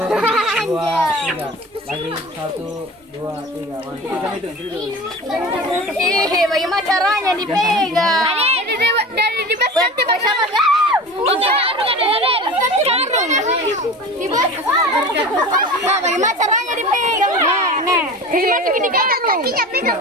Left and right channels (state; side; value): normal; both; correlation 0.34